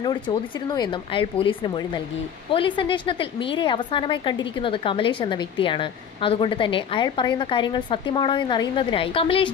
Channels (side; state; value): right; quieter; 8.1 dB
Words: ചോദിച്ചിരുന്നു എന്നും അയാൾ പോലീസിന് മൊഴി നൽകി. പോലീസ് അന്വേഷണത്തിൽ മീരയെ അവസാനമായി കണ്ടിരിക്കുന്നത് കമലേഷ് എന്ന വ്യക്തിയാണ്. അതുകൊണ്ട് തന്നെ അയാൾ പറയുന്ന കാര്യങ്ങൾ സത്യമാണോ എന്നറിയുന്നതിനായി